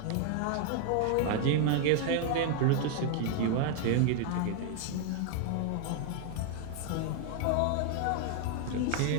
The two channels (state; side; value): different; both; correlation 0.00